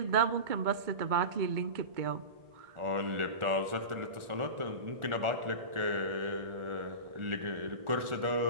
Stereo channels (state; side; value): late; left; 1.4 ms